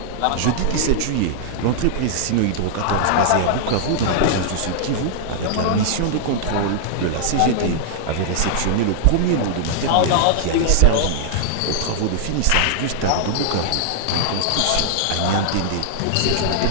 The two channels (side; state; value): both; different; correlation -0.01